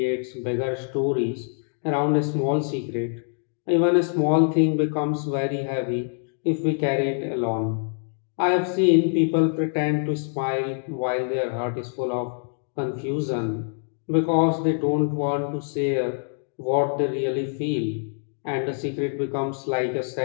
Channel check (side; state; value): right; silent; 62 dB below the other